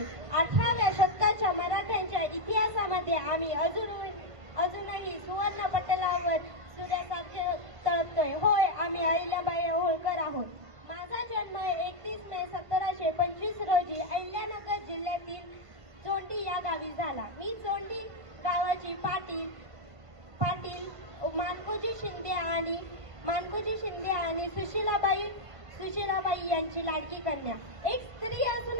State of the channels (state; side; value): late; left; 1.5 ms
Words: 18व्या शतकाच्या मराठ्यांच्या इतिहासामध्ये आम्ही अजूनही सुवर्ण पटलावर सूर्यासारखे तळपतोय. होय, आम्ही अहिल्याबाई होळकर आहोत. माझा जन्म 31 मे 1725 रोजी अहिल्यानगर जिल्ह्यातील चोंडी या गावी झाला. मी चोंडी गावाची पाटील मानकोजी शिंदे आणि सुशीलाबाई यांची लाडकी कन्या. एक स्त्री